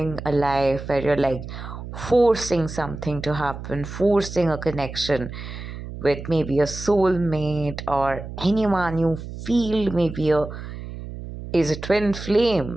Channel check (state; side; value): noise; right; hum, 10 dB below the sound